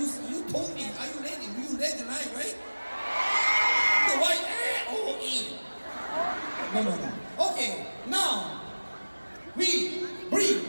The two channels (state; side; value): inverted; both; correlation -1.00